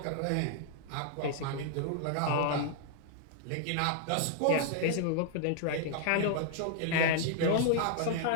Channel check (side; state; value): both; different; correlation -0.01